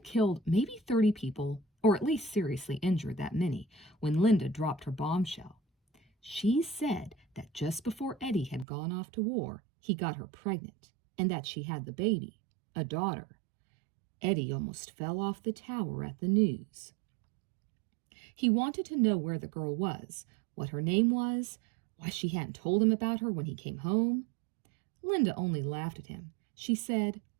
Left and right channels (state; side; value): drops out; left; at 8.7 s